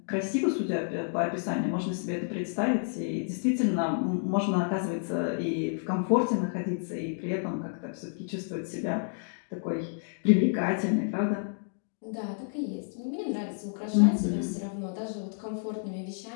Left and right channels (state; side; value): silent; right; digital silence